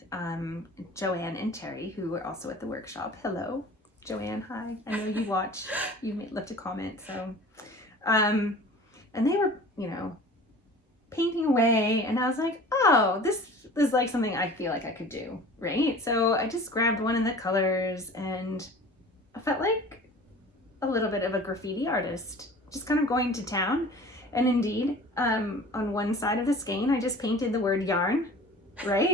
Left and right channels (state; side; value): normal; both; correlation 0.43